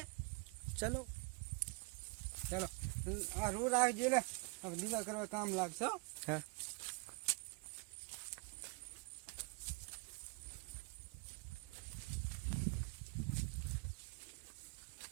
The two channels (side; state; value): left; quieter; 32.2 dB